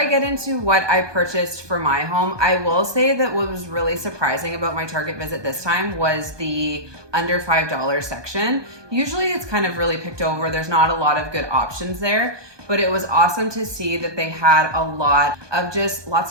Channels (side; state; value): left; late; 1.2 ms